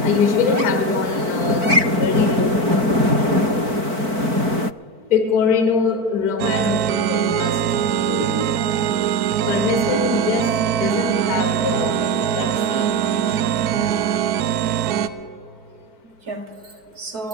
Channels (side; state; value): left; late; 4.5 ms